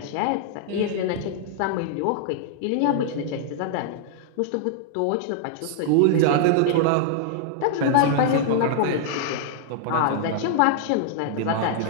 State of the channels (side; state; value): both; different; correlation -0.01